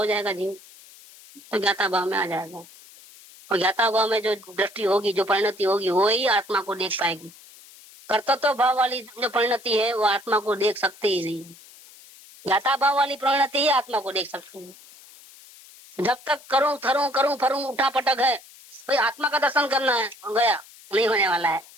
जाएगा जीव, तो ज्ञाता भाव में आ जाएगा। और ज्ञाता भाव में जो दृष्टि होगी, जो परिणति होगी, वो ही आत्मा को देख पाएगी। कर्तव्य भाव वाली जो परिणति है वो आत्मा को देख सकती ही नहीं। ज्ञाता भाव वाली परिणति ही आत्मा को देख सकती है। जब तक करूं थरूं करूं फरूं उठा पटक है, भाई आत्मा का दर्शन करना है, गया नहीं होने वाला है।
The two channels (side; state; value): left; noise; hiss, 22 dB below the sound